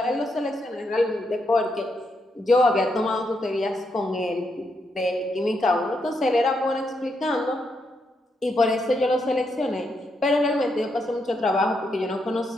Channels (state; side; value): normal; both; correlation 0.80